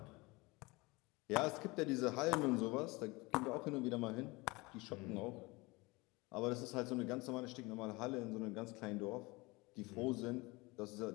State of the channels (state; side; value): quieter; right; 23.9 dB